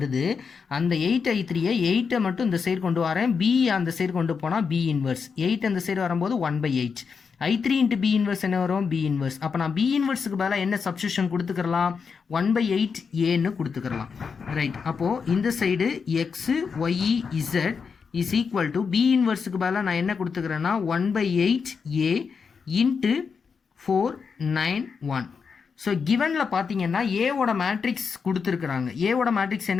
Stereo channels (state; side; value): quieter; right; 5.7 dB